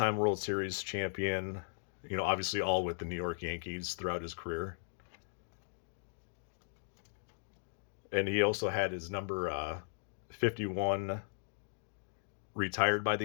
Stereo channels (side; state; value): right; silent; digital silence